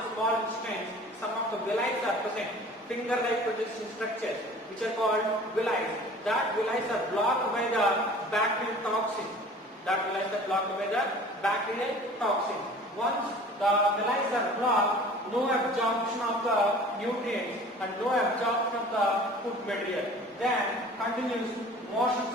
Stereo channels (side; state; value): both; normal; correlation 0.45